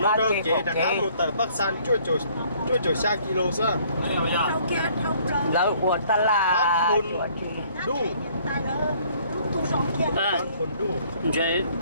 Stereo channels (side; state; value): both; inverted; correlation -0.60